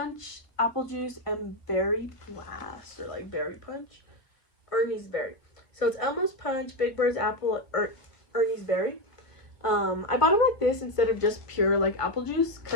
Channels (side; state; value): right; late; 1.6 ms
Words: Apple Juice, and Berry Blast, or like Berry Punch, or Ernie's Berry. So it's Elmo's Punch, Big Bird's Apple, Ernie's Berry. I bought them like this instead of just pure like apple juice